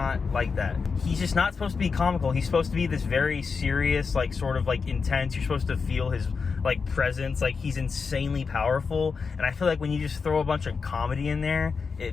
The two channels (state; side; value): quieter; right; 5.2 dB